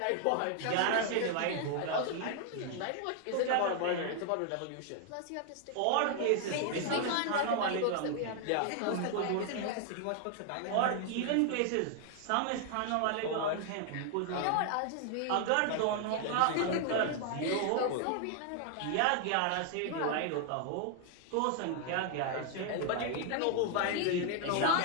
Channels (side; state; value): both; different; correlation 0.00